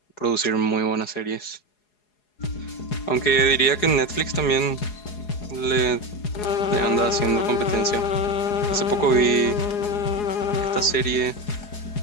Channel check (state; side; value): late; right; 4.8 ms